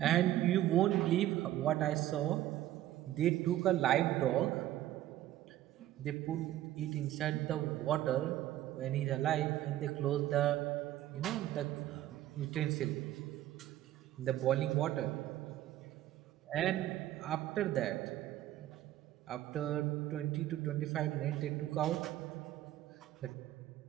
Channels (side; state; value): left; quieter; 13.7 dB